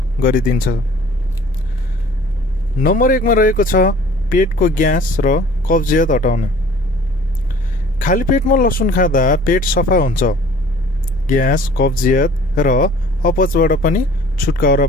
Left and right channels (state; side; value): normal; both; correlation 0.49